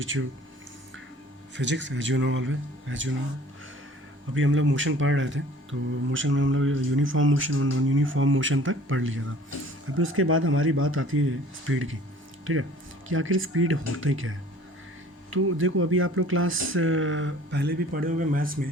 you physics. As you know, always, as you know, अभी हम लोग motion पढ़ रहे थे, तो motion में हम लोग यूनिफॉर्म मोशन और नॉन यूनिफॉर्म मोशन तक पढ़ लिया था। अभी उसके बाद हमारी बात आती है स्पीड की। ठीक है, कि आखिर स्पीड होता ही क्या है। तो देखो, अभी आप लोग क्लास पहले भी पढ़े होंगे मैथ्स में,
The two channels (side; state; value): both; normal; correlation 0.50